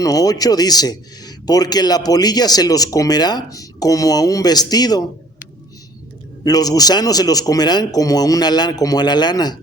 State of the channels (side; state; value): both; normal; correlation 0.54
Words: 8 dice, porque la polilla se los comerá como a un vestido, los gusanos se los comerán como a la